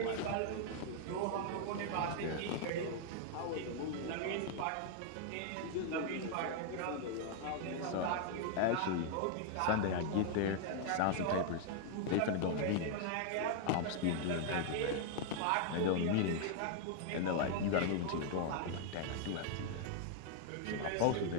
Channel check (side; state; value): both; different; correlation 0.00